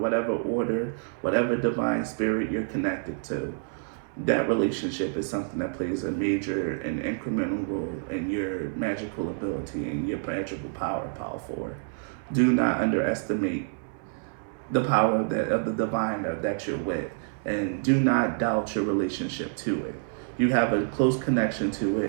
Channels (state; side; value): silent; left; 60 dB below the other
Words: order, whatever divine spirit you're connected to, that relationship is something that plays a major and incremental role in your magical ability and your magical power forward. Do not underestimate the power of the divine that you're with, and do not doubt your relationship to it. You have a close connection to